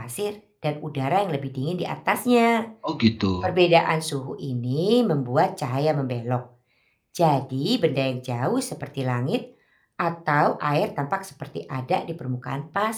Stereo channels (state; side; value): identical; both; correlation 1.00